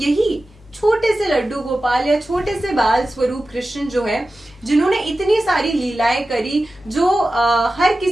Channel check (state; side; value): normal; both; correlation 0.94